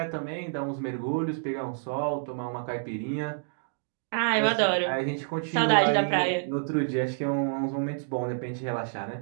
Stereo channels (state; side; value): silent; left; digital silence